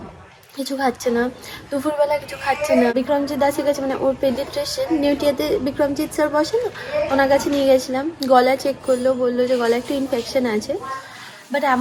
কিছু খাচ্ছে না, দুপুরবেলা কিছু খাচ্ছে না। বিক্রমজিৎ দাসের কাছে, মানে ওর পেডিয়াট্রিশিয়ান নিউটিয়াতে বিক্রমজিৎ স্যার বসে না, ওনার কাছে নিয়ে গেছিলাম। গলা চেক করলো, বললো যে গলা একটু ইনফেকশন আছে, বাট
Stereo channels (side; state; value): both; identical; correlation 1.00